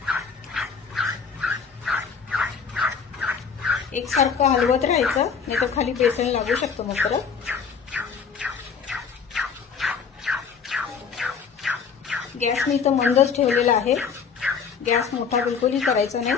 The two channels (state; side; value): quieter; right; 6.2 dB